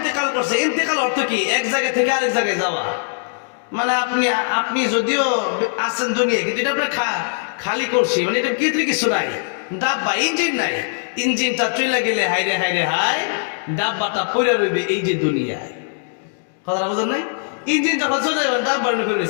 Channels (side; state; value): right; silent; digital silence